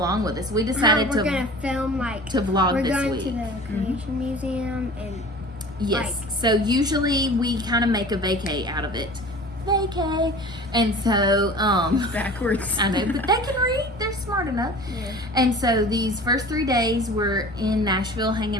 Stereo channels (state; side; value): normal; both; correlation 0.41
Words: with us. We decided we're gonna film to vlog we're this going week. to the Creation Museum and Yes. So usually we kind of make a vacay out of it. Vacay. And so Backwards. I know, but they can read. They're smart enough. Yeah. And so these first 3 days we're in Nashville